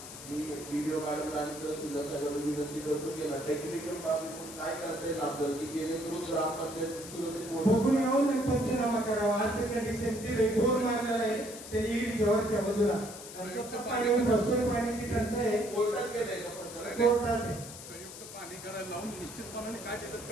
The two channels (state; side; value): noise; left; hiss, 13 dB below the sound